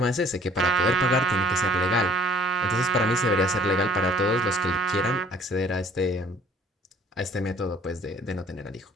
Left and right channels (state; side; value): normal; both; correlation 0.54